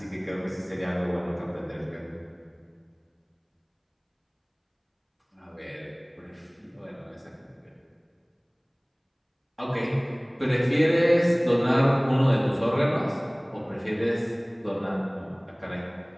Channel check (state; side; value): identical; both; correlation 1.00